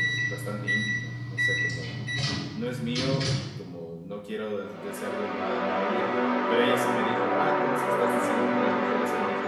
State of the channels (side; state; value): both; identical; correlation 1.00